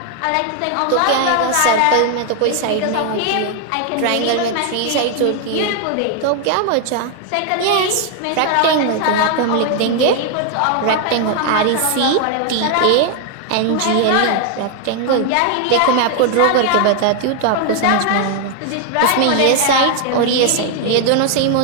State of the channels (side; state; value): both; different; correlation 0.00